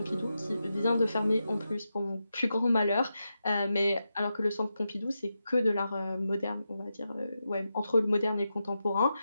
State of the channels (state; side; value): inverted; both; correlation -0.88